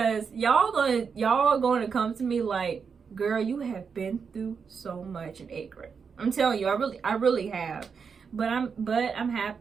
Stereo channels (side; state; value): left; quieter; 6.0 dB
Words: y'all going to come to me like, girl, you have been through so much in 8th grade. I'm telling you, I really have. But I'm